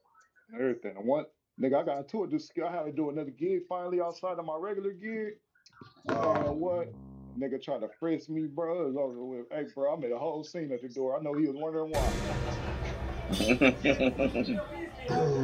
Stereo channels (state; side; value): identical; both; correlation 1.00